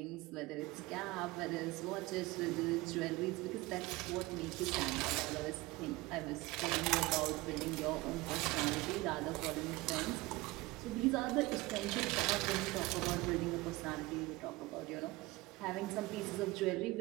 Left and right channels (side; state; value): left; quieter; 21.1 dB